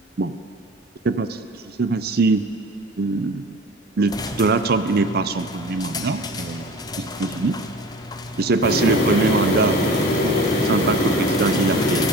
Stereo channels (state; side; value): normal; both; correlation 0.40